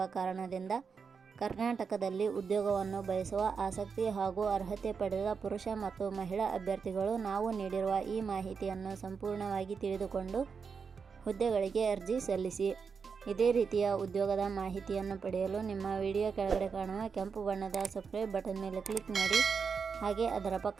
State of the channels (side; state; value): left; quieter; 5.7 dB